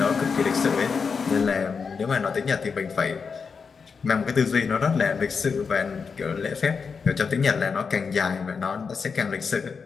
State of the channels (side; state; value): right; quieter; 5.5 dB